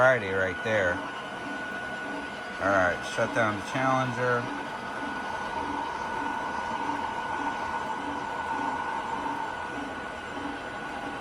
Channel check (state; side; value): identical; both; correlation 1.00